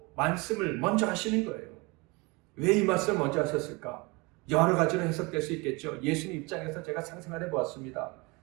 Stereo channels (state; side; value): quieter; left; 26.5 dB